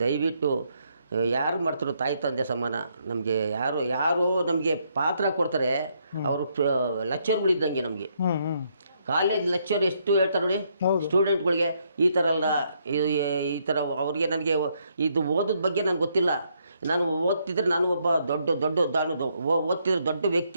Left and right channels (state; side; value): inverted; both; correlation -0.74